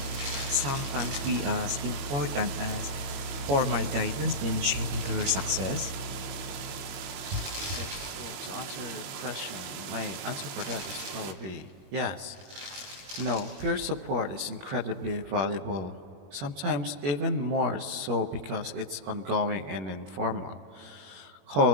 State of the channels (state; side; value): late; left; 22 ms